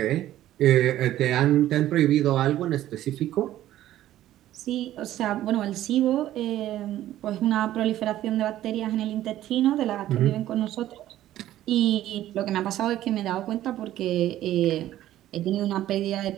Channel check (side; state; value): left; quieter; 13.4 dB